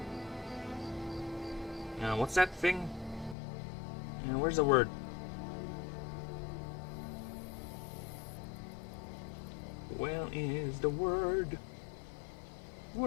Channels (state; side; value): drops out; right; at 3.4 s